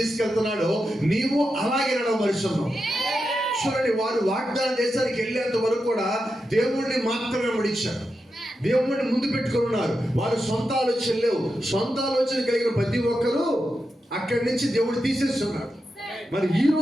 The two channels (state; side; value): normal; both; correlation 0.88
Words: నీవు అలాగే నడవమరుస్తున్నావు. చూడండి, వారు వాగ్దాన దేశానికి వెళ్ళేంత వరకు కూడా దేవుణ్ణి మాత్రమే వెంబడించారు. దేవుణ్ణి ముందు పెట్టుకుని ఉన్నారు. వారు సొంత ఆలోచన లేవు. సొంత ఆలోచన కలిగిన ప్రతి ఒక్కరూ అక్కడి నుంచి దేవుడు తీసేస్తున్నాడు. మరి ఈ